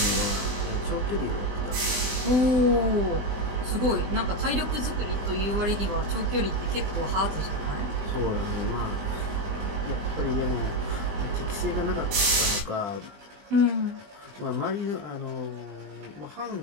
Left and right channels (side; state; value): left; late; 20 ms